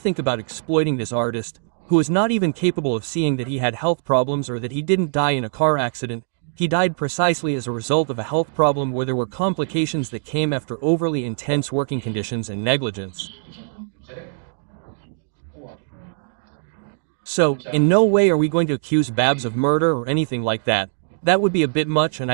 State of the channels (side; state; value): left; silent; digital silence